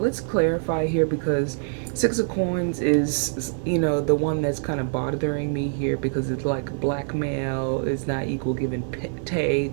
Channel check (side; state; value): left; silent; digital silence